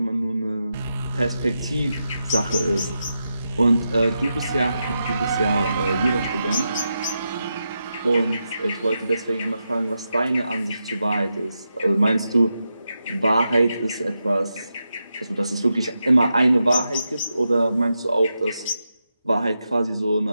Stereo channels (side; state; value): both; inverted; correlation -0.87